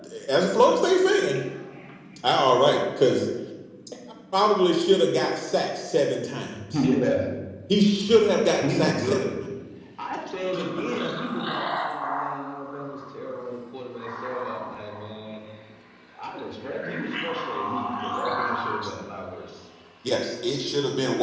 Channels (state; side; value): identical; both; correlation 1.00